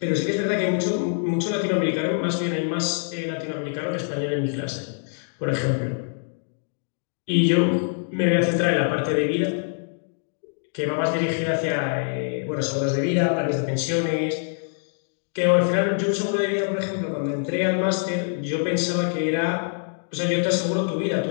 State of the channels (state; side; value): silent; right; digital silence